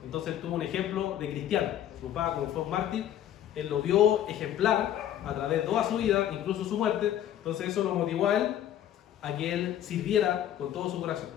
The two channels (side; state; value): right; quieter; 11.3 dB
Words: entonces tuvo un ejemplo de cristiano. Su papá, como fue un mártir, él lo vio ejemplar a través de toda su vida, incluso su muerte, entonces eso lo motivó a él a que él sirviera con todo su corazón,